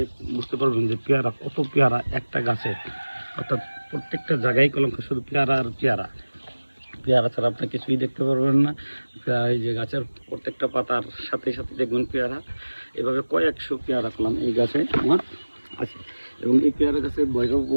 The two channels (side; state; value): both; inverted; correlation -1.00